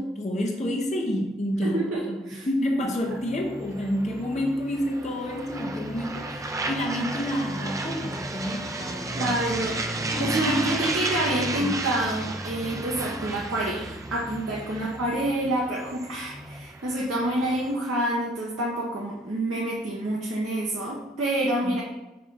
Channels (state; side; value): normal; both; correlation 0.57